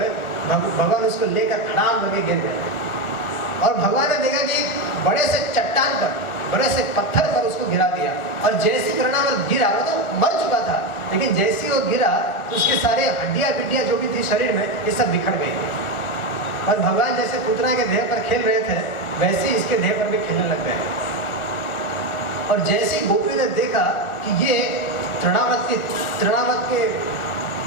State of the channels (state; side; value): late; right; 1.4 ms